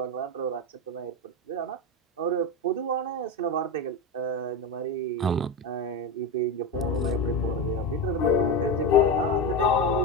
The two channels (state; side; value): normal; both; correlation 0.17